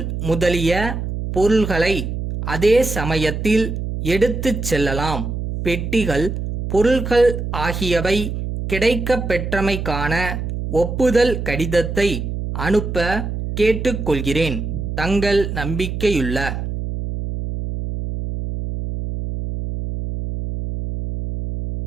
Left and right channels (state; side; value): noise; right; hum, 4 dB below the sound